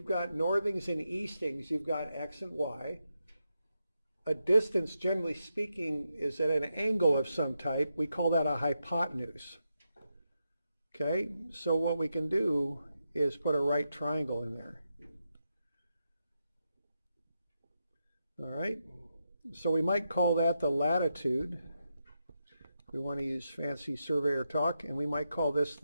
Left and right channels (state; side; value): inverted; both; correlation -0.86